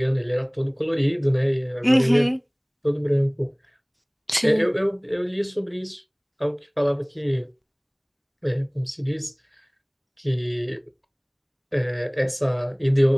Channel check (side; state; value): both; identical; correlation 1.00